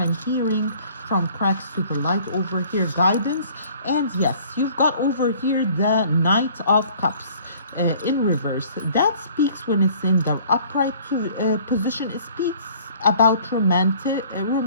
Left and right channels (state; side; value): inverted; both; correlation -0.53